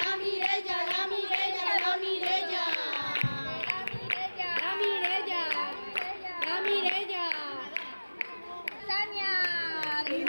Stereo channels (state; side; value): inverted; both; correlation -1.00